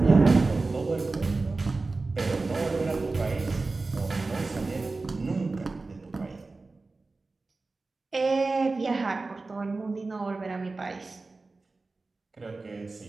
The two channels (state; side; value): quieter; left; 3.6 dB